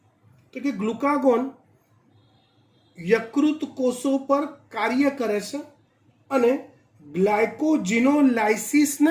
તો કે ગ્લુકાગોન યકૃત કોષો પર કાર્ય કરે છે અને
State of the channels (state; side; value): identical; both; correlation 1.00